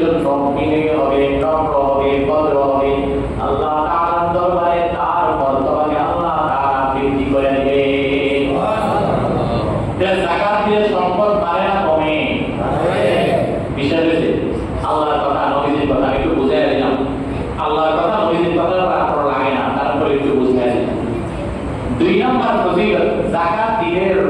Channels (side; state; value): both; identical; correlation 1.00